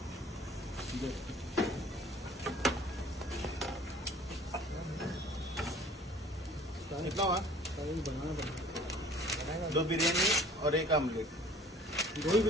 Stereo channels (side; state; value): both; normal; correlation 0.50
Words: कितना हुआ? 2 बिरयानी और 1 आमलेट. 2 ही